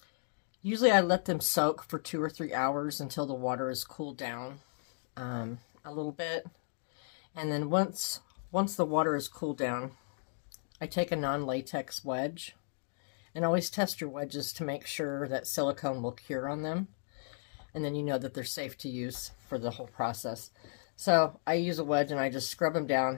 Usually I let them soak for 2 or 3 hours until the water is cooled down a little bit. And then once the water is cooled down, I take a non-latex wedge, and always test your wedges to make sure that silicone will cure on them, and then you know that they're safe to use for the whole process. So I use a wedge and I just scrub them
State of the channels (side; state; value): right; silent; digital silence